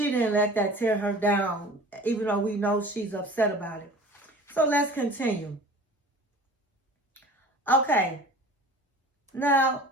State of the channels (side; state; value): both; normal; correlation 0.42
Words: let that tear her down, even though we know she's upset about it. So let's continue. Okay. Now,